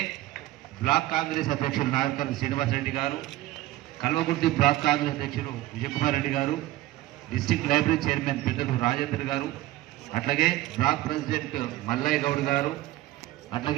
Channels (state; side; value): quieter; left; 16.4 dB